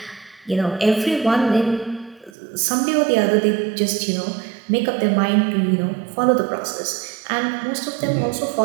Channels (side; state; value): left; drops out; at 2.3 s